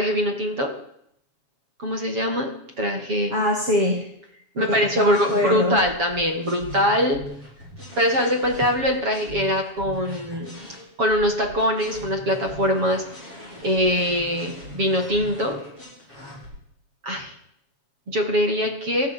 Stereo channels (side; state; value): left; late; 7.2 ms